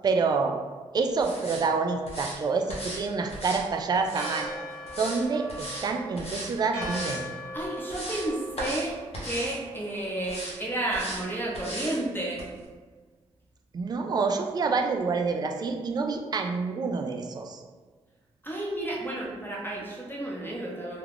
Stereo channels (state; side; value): quieter; left; 3.2 dB